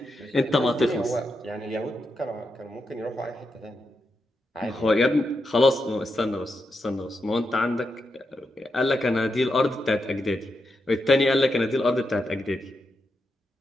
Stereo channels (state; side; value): normal; both; correlation 0.85